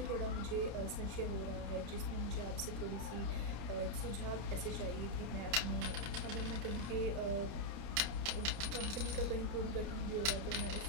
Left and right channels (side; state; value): left; late; 30 ms